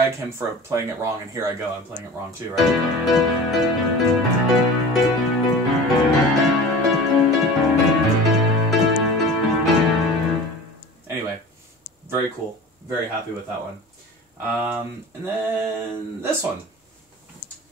him for playing it wrong, and here I go, I'm playing it wrong too, right? Anyway, very cool. Very happy with that one. And then this one.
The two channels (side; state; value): both; normal; correlation 0.37